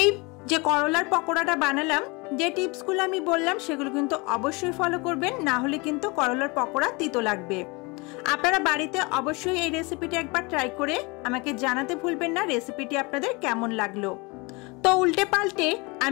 যে করলার পকোড়াটা বানালাম, যে টিপসগুলো আমি বললাম সেগুলো কিন্তু অবশ্যই ফলো করবেন, না হলে কিন্তু করলার পকোড়া তিতো লাগবে। আপনারা বাড়িতে অবশ্যই এই রেসিপিটি একবার ট্রাই করে আমাকে জানাতে ভুলবেন না রেসিপিটি আপনাদের কেমন লাগলো। তো উল্টে পাল্টে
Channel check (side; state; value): right; quieter; 27.1 dB